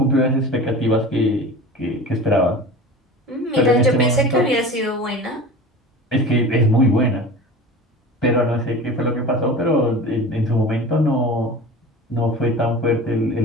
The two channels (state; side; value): normal; both; correlation 0.35